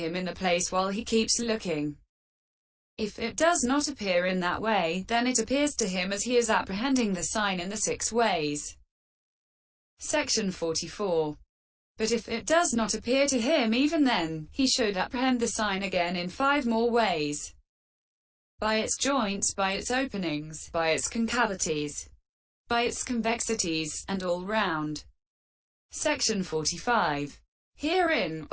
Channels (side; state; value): both; identical; correlation 1.00